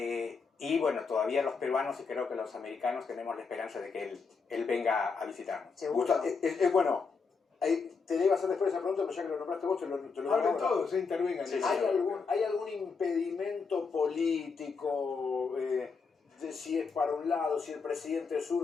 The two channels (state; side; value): quieter; right; 5.0 dB